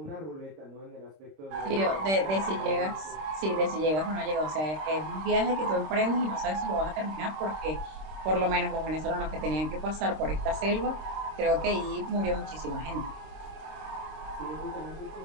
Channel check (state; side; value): late; left; 26 ms